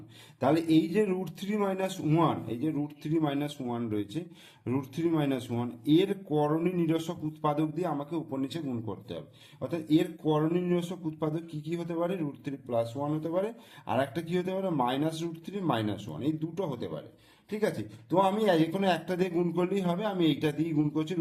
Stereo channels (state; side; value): identical; both; correlation 1.00